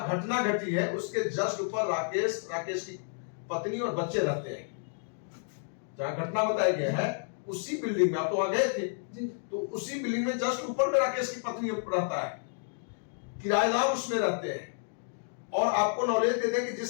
घटना घटी है उसके जस्ट ऊपर राकेश की पत्नी और बच्चे रहते हैं। जहां घटना बताया गया है उसी बिल्डिंग में, आप तो वहां गए थे जी। तो उसी बिल्डिंग में जस्ट ऊपर में राकेश की पत्नी रहता है, किराएदार उसमें रहते हैं। और आपको नॉलेज दे दें कि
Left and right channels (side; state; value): right; silent; digital silence